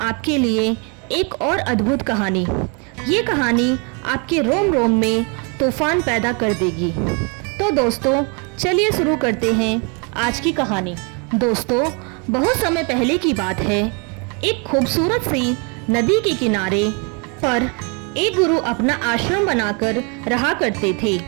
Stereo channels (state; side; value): quieter; left; 34.6 dB